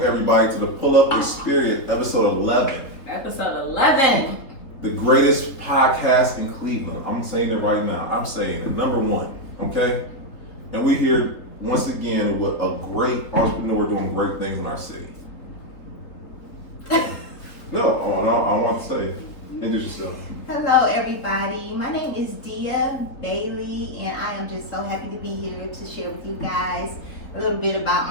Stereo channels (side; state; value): right; late; 4.0 ms